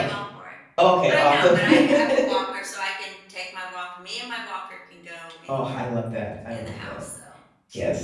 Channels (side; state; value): both; identical; correlation 1.00